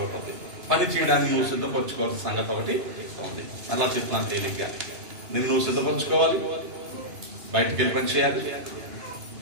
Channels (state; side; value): late; left; 2.9 ms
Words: అవుతుంది. పని చేయడానికి నువ్వు సిద్ధపరచుకోవాల్సిన సంగతి ఒకటి ఉంది. అలా చెప్తున్నాను తేలిగ్గా. నువ్వు సిద్ధపరచుకోవాలి, బయటకు వెళ్ళి పని చేయాలి,